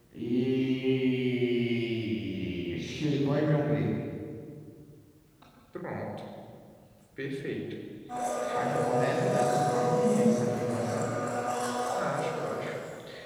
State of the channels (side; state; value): both; identical; correlation 1.00